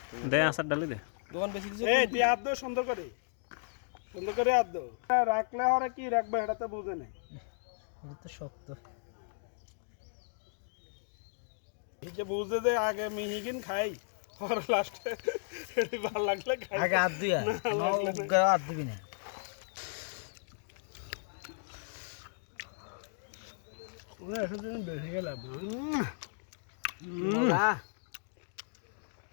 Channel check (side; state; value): right; silent; digital silence